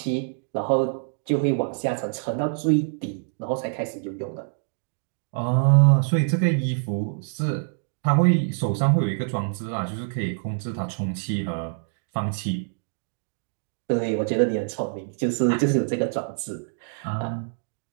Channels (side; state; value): left; silent; digital silence